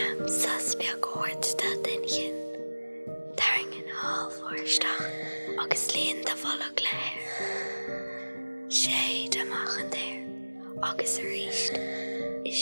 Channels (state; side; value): inverted; both; correlation -1.00